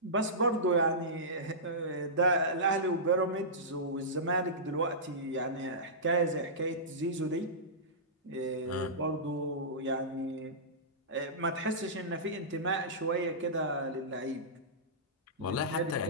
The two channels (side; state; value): both; normal; correlation -0.18